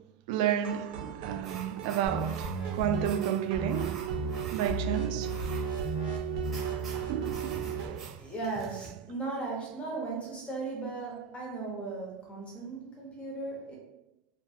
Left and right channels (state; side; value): quieter; left; 6.5 dB